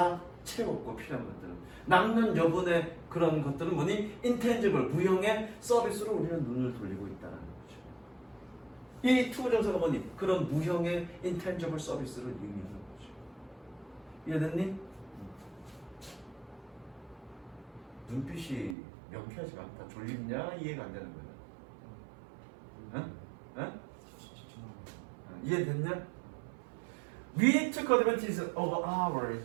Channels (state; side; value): drops out; left; at 18.8 s